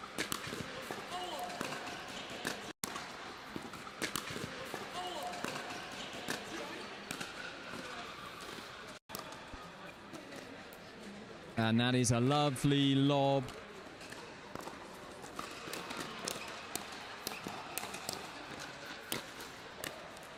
And that is a lovely lob.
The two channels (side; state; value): both; identical; correlation 1.00